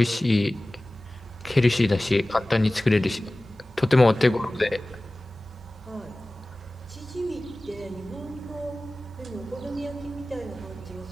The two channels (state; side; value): normal; both; correlation 0.97